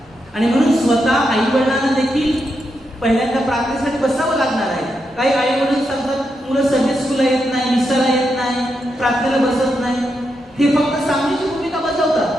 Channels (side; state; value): both; normal; correlation 0.84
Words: आणि म्हणून स्वतः आई वडिलांना देखील पहिल्यांदा प्रार्थनेसाठी बसावं लागणार आहे. काही आई वडील सांगतात मुलं संडे स्कूलला येत नाही, मिसाला येत नाही, प्रार्थनेला बसत नाही. हे फक्त सांगण्याची भूमिका